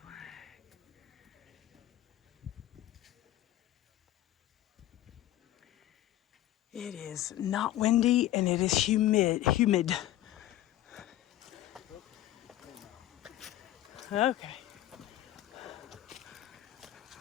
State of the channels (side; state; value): right; quieter; 13.9 dB